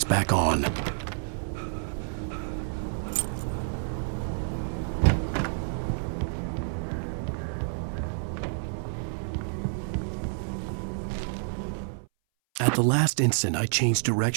back on. At the last instant, I changed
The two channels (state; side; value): silent; left; 59 dB below the other